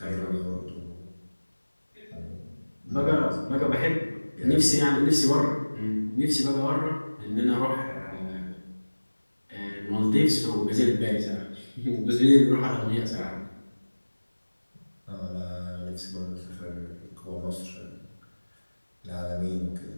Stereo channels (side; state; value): both; inverted; correlation -1.00